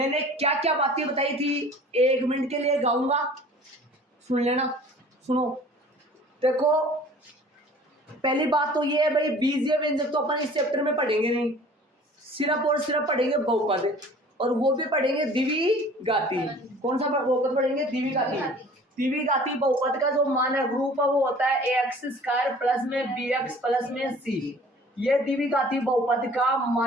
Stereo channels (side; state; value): both; normal; correlation 0.48